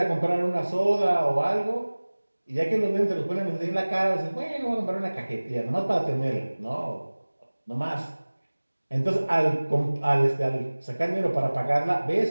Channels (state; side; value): inverted; both; correlation -1.00